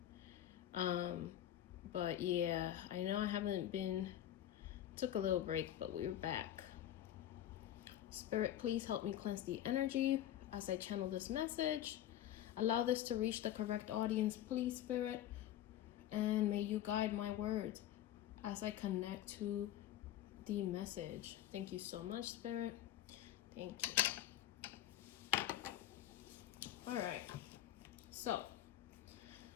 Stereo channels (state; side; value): quieter; right; 12.4 dB